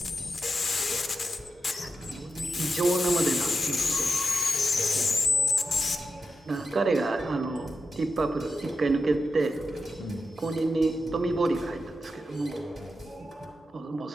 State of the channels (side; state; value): both; normal; correlation 0.88